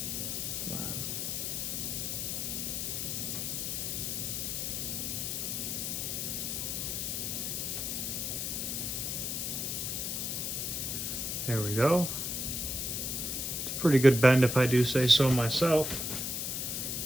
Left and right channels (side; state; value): left; noise; hiss, 2 dB below the sound